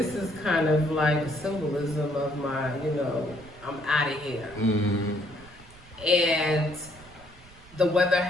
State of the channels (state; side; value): noise; right; rumble, 23 dB below the sound